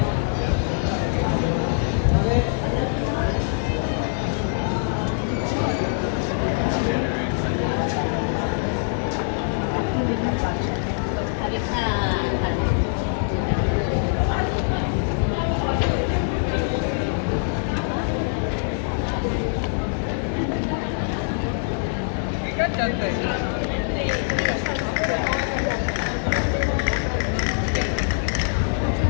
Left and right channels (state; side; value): silent; right; 63 dB below the other